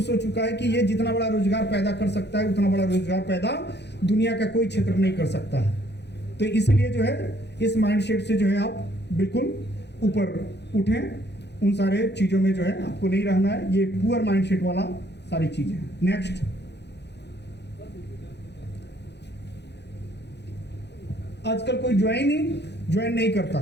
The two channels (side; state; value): right; late; 0.50 ms